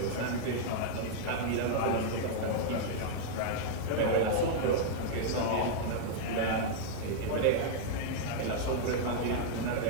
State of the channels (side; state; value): both; different; correlation -0.01